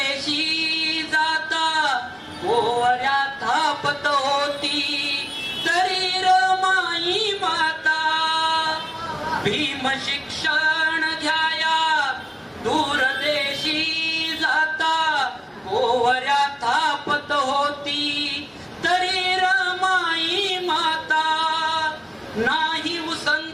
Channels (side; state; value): both; identical; correlation 1.00